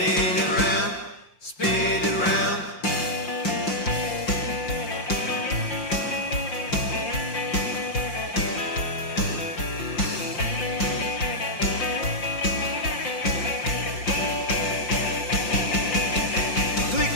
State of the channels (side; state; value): right; late; 5.7 ms